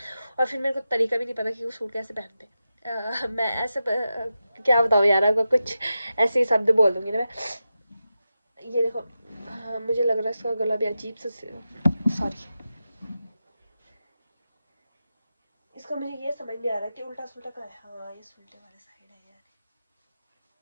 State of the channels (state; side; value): inverted; both; correlation -0.91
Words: और फिर मेरे को तरीका भी नहीं पता कि वो सूट कैसे पहनते। मैं ऐसे क्या बताऊँ यार, आपको कुछ ऐसे ही शब्द बोल दूँगी ना मैं। ये देखो, हाँ, मुझे लग रहा है इसका गला भी अजीब सा, सॉरी, इसका मुझे ये समझ नहीं आ रहा कि उल्टा सुल्टा का है। हाँ, ये उल्टे वाले साइड है यार,